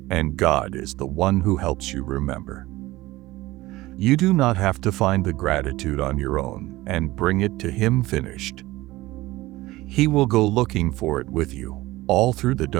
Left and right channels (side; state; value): left; quieter; 18.5 dB